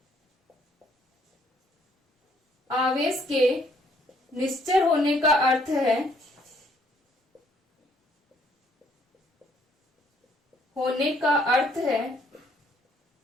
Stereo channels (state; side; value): normal; both; correlation 0.66